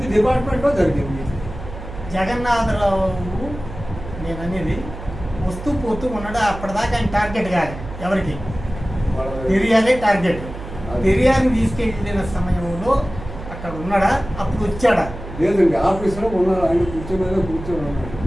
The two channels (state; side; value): noise; right; hum, 11 dB below the sound